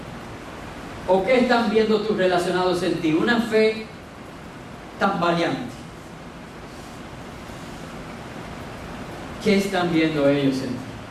¿O qué están viendo tus relacionados en ti? Una fe tambaleante. ¿Qué están viendo ellos en ti?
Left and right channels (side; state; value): both; identical; correlation 1.00